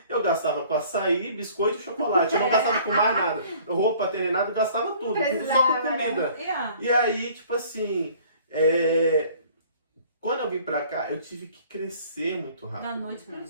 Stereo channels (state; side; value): inverted; both; correlation -0.53